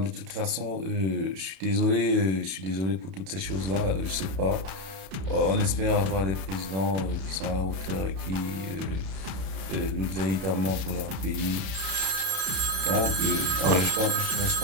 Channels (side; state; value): left; late; 32 ms